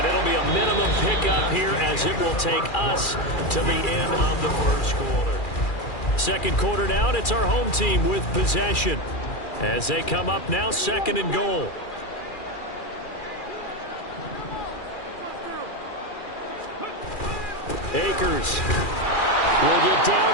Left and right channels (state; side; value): late; right; 2.4 ms